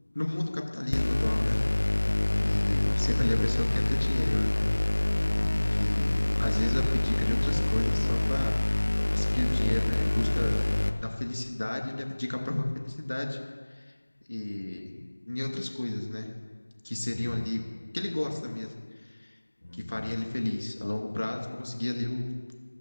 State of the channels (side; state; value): both; inverted; correlation -1.00